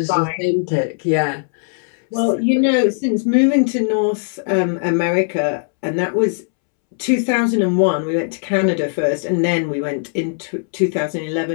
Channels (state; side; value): silent; right; 67 dB below the other